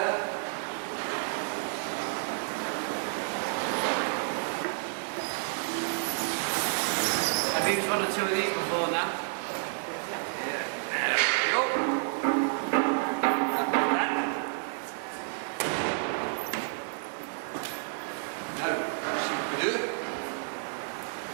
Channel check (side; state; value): left; silent; digital silence